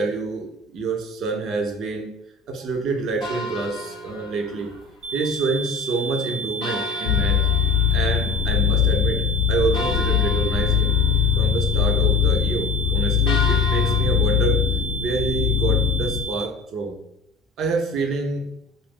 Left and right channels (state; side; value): quieter; right; 3.2 dB